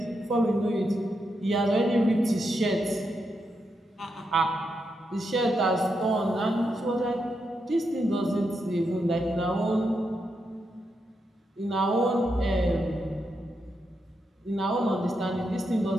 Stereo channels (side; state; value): both; normal; correlation 0.83